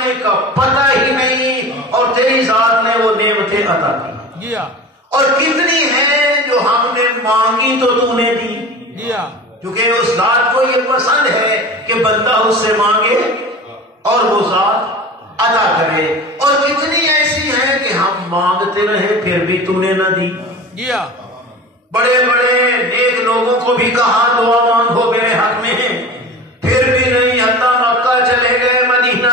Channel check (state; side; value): normal; both; correlation 0.35